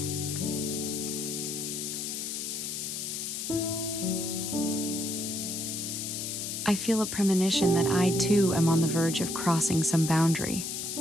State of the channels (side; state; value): left; noise; hiss, 4 dB below the sound